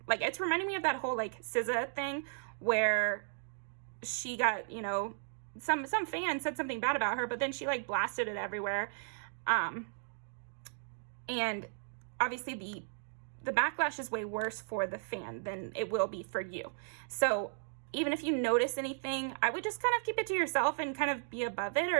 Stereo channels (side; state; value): left; silent; digital silence